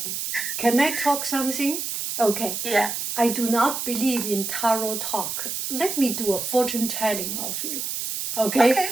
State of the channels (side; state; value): right; noise; hiss, 4 dB below the sound